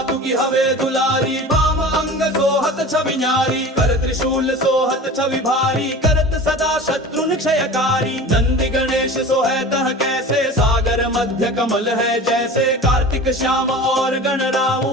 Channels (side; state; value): both; normal; correlation 0.36